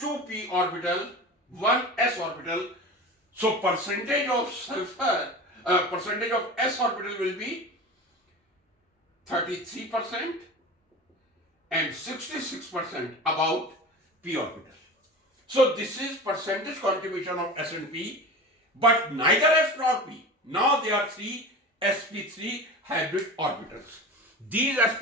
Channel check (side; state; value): both; normal; correlation 0.32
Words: orbital, 1 s orbital. So percentage of sulfur, percentage of s orbital will be 33% and 66% about p orbital. So this is percentage contribution of s and p, but neither s nor p. Now there are three sp3 hybrid orbitals. These